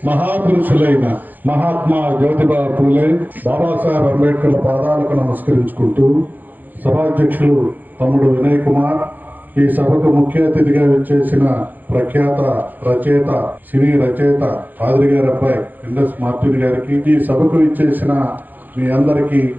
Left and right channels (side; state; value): left; late; 0.085 ms